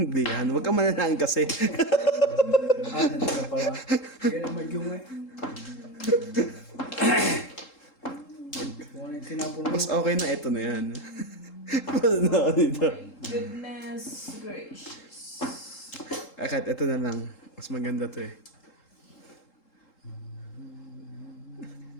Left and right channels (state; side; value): late; right; 3.7 ms